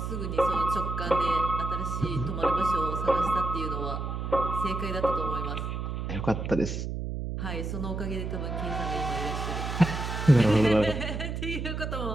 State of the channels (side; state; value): right; noise; hum, 4 dB below the sound